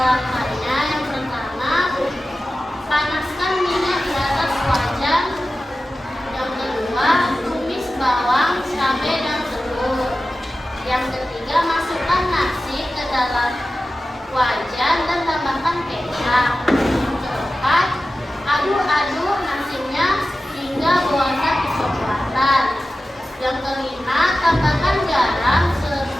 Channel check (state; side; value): normal; both; correlation 0.94